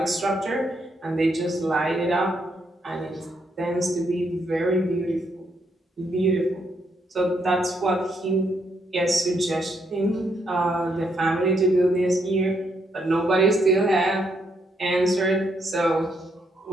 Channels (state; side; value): normal; both; correlation 0.76